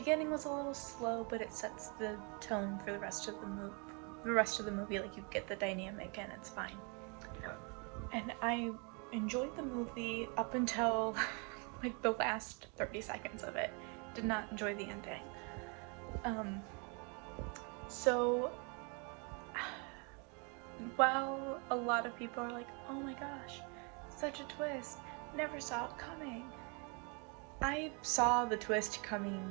was a little slow, but it sets the tone for the rest of the movie. Like, you get the dynamic and it's fine. And I enjoyed the movie up until like the last 30 seconds of it. Did not enjoy the ending. So while a lot of people are like, oh my gosh, such a twist, never saw it coming, I saw the twist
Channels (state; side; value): quieter; left; 34.2 dB